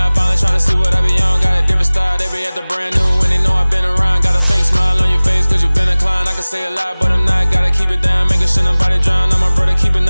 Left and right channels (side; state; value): both; inverted; correlation -1.00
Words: Finally trying to see what I be on. Got a different style, they be at the brand new when they know I've been around. Got a fake smile on your face cause you been inclined. I can say a lot, but I'm not. Gotta keep it down, making sure nobody drown. I'm my brother, keep it